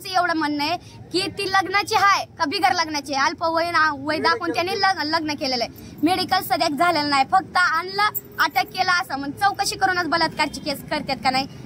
एवढं म्हणणं आहे की ती लग्नाची आहे का बिगर लग्नाची आहे. अल्प वय दाखवून त्यांनी लग्न केलेलं आहे. मेडिकल सध्या झालेलं नाही, फक्त आणलं अटक केलं असं मग चौकशी करूनच बलात्कारची केस करतात का नाही,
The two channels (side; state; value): both; identical; correlation 1.00